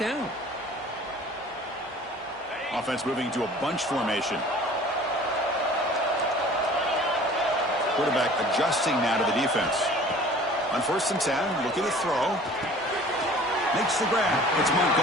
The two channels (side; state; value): both; normal; correlation 0.47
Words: down. Offense moving to a bunch formation. Quarterback adjusting now to the defense. On 1st and 10, looking to throw. Makes the grab. It's